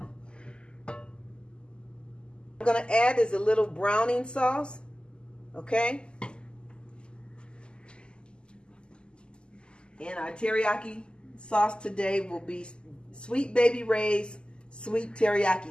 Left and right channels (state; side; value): late; right; 0.049 ms